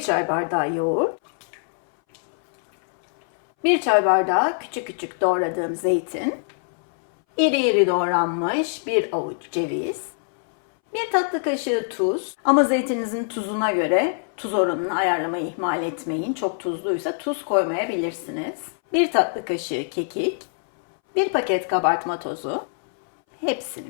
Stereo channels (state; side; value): silent; right; 62 dB below the other